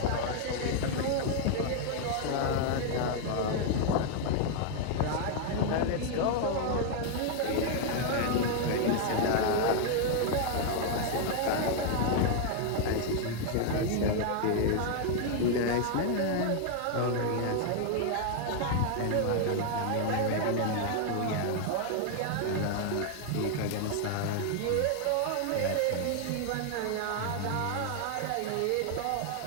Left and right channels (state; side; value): different; both; correlation 0.00